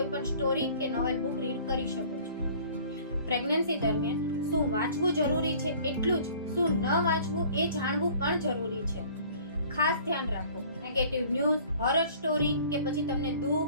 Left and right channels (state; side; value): inverted; both; correlation -0.51